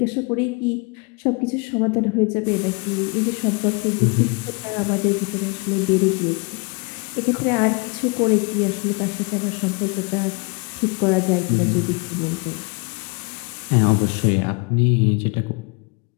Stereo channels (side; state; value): right; quieter; 29.9 dB